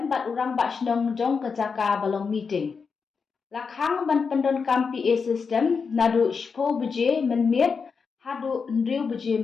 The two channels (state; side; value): quieter; right; 5.4 dB